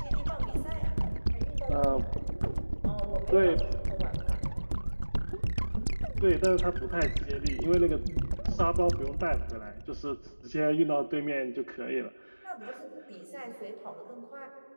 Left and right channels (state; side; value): inverted; both; correlation -1.00